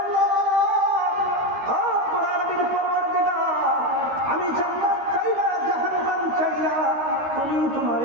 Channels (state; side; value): late; left; 13 ms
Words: আল্লাহ, আমি জান্নাত চাই না, জাহান্নাম চাই না, তুমি তোমার